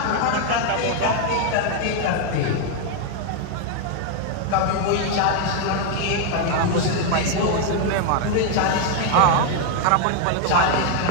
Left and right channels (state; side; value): different; both; correlation 0.00